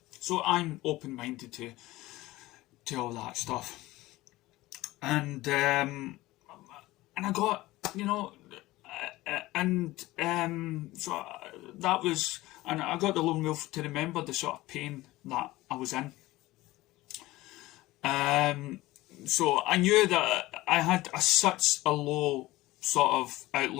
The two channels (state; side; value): quieter; right; 18.4 dB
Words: So I'm open-minded to all that stuff. And I got, so that was, and I got the lone wolf to remember the sort of pain that I was in. So I knew that I had such a low sort of